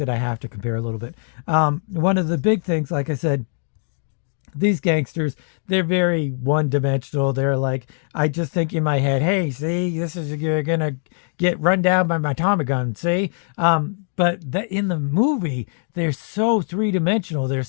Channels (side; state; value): right; silent; 59 dB below the other